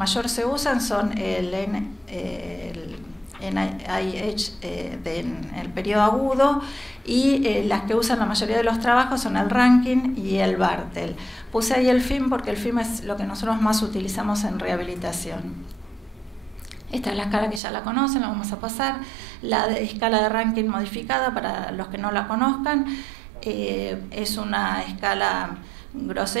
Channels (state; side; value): drops out; left; at 17.6 s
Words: se usan son el NIH en el periodo agudo, y las que usan la mayoría de los trabajos son el Rankin y el Bartel. Puse ahí el FIM porque el FIM es lo que nosotros más utilizamos en rehabilitación. Esta es la escala que ya la conocen, la vamos a pasar. La escala de Rankin modificada, para los que no la conozcan, es una escala